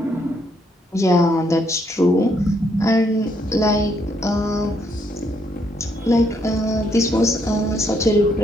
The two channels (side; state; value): both; normal; correlation 0.73